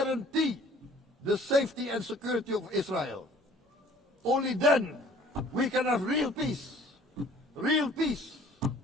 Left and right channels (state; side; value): normal; both; correlation 0.53